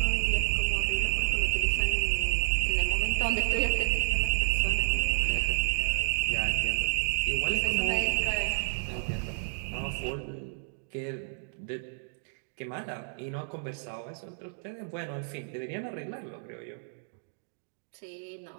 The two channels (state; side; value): silent; left; digital silence